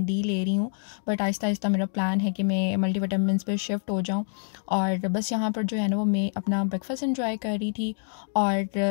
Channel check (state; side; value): silent; right; digital silence